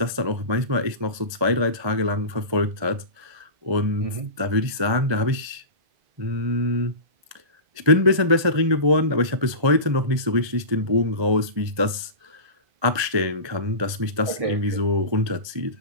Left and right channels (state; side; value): late; left; 1.3 ms